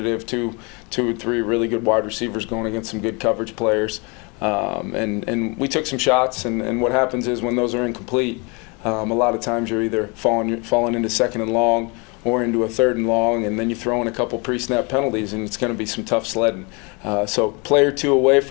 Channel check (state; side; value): quieter; right; 30.3 dB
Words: Two or three really good wide receivers going against some good coverage players. And we took some shots, and what happens is when those are incomplete, a lot of times you're either falling into second and long or into a third and long, and then you throw in a couple pre-snap penalties, and it's going to be some tough sledding. So play or two away